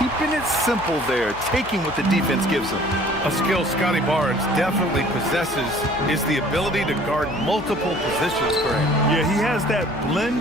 it simple there, taking what the defense gives him. A skill Scotty Barnes definitely possesses is the ability to guard multiple positions for him. Yeah, he has that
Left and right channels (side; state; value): left; noise; hum, 18 dB below the sound